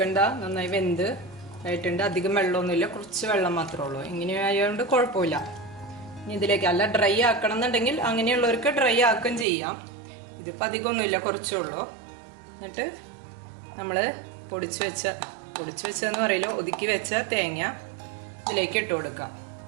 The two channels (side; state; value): left; drops out; at 9.5 s